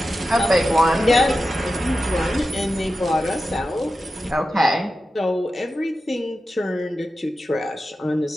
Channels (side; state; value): both; normal; correlation 0.92